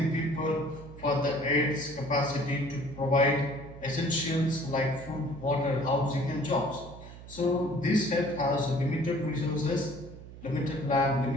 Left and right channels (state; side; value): noise; right; hum, 15 dB below the sound